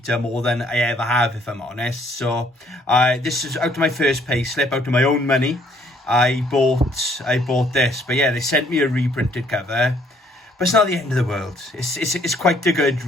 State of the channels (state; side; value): normal; both; correlation 0.64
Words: more than I ever have, if I'm honest. So this is out of my first pay slip, out of my own money. I bought this, but yeah, they sent me a reprinted cover. But it's not the end of the world. It's quite a good